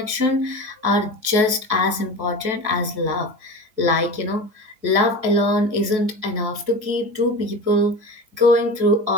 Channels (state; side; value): late; left; 4.6 ms